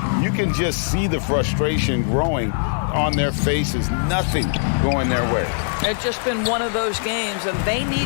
you can just see the frustration growing on their faces. Nothing going their way. It's just been one of those games, and they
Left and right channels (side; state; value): right; silent; digital silence